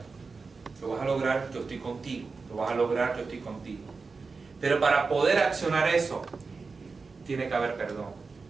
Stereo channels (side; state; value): left; quieter; 4.4 dB